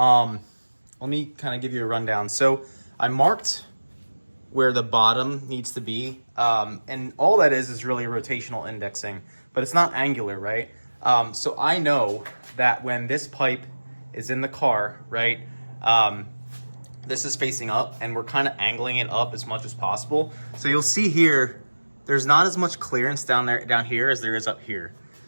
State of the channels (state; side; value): inverted; both; correlation -1.00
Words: me kind of give you a rundown. So I marked where the bottom needs to be. And all that is really rotational indexing, but it's not angular, right? So I know that when this pipe is in the car, right, this is facing up, and we're kind of angling it up as much as possible. So you'll see here, there's not as much clearance down here as there is up here.